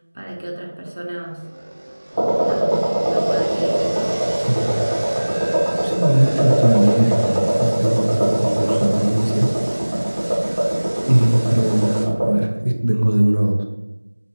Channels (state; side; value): inverted; both; correlation -1.00